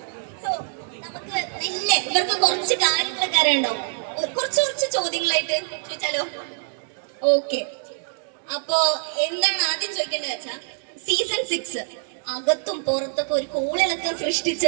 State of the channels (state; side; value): silent; left; digital silence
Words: സോ നമുക്ക് നല്ല ഇവർക്ക് കുറച്ച് കാര്യങ്ങളൊക്കെ അറിയണ്ടാവും. കുറച്ച് ചോദ്യങ്ങളായിട്ട് ചോദിച്ചാലോ? ഓക്കെ, അപ്പോ എന്താണ് ആദ്യം ചോദിക്കേണ്ടത് വെച്ചാൽ, സീസൺ 6 അകത്തും പുറത്തൊക്കെ ഒരു കോളിളക്കം